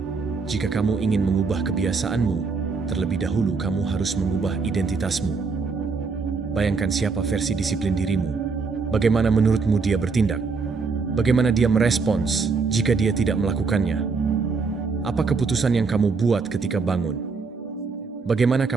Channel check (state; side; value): quieter; left; 4.7 dB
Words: Jika kamu ingin mengubah kebiasaanmu, terlebih dahulu kamu harus mengubah identitasmu. Bayangkan siapa versi disiplin dirimu. Bagaimana menurutmu dia bertindak? Bagaimana dia merespons jika dia tidak melakukannya? Apa keputusan yang kamu buat ketika bangun? Bagaimana